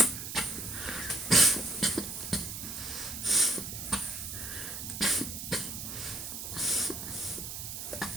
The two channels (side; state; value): right; noise; hiss, 7 dB below the sound